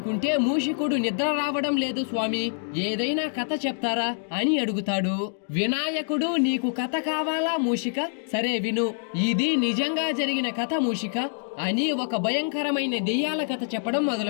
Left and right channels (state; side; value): silent; right; digital silence